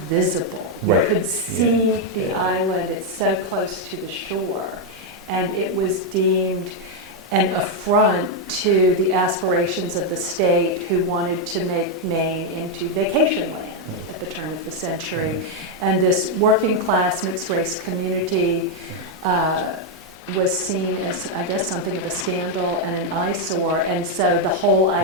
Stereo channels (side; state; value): both; normal; correlation 0.01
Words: visible. Right. You could see the island, it's so close to the shore, and it was deemed an affront to the aspirations of the state who wanted to make Maine into vacation land at the turn of the century. And this working class mixed race community was seen as, I guess, something of a scandal and an eyesore. And so the whole